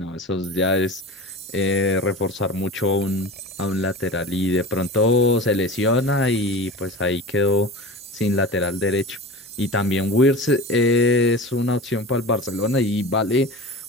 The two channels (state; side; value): normal; both; correlation 0.33